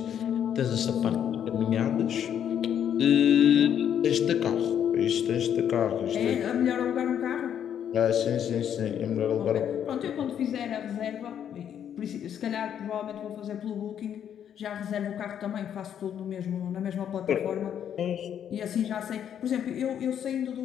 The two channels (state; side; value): quieter; right; 9.2 dB